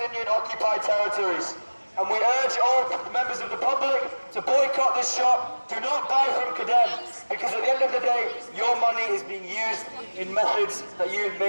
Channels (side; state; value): both; inverted; correlation -1.00